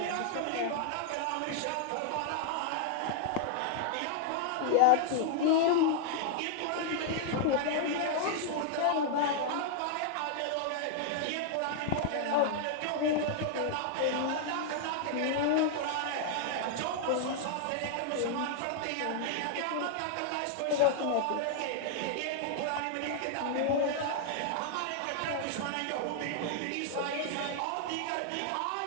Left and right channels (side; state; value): both; different; correlation -0.01